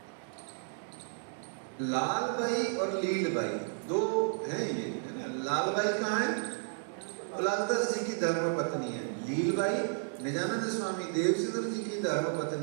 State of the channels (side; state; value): left; silent; 56 dB below the other